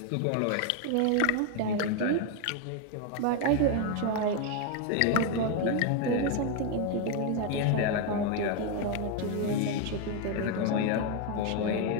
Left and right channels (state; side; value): different; both; correlation 0.01